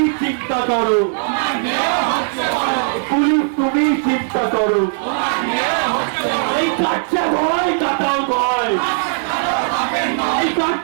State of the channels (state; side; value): silent; left; 67 dB below the other